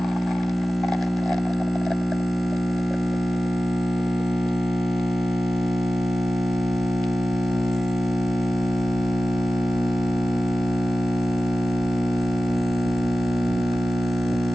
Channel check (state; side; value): normal; both; correlation 0.95